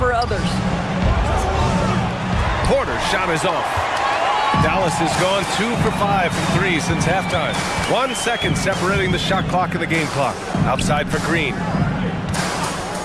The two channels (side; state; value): both; identical; correlation 1.00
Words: others. Porter's shot is off. Dallas has gone 2 for 5 from 3 since halftime. 1 second separating the shot clock and the game clock. Outside for Green.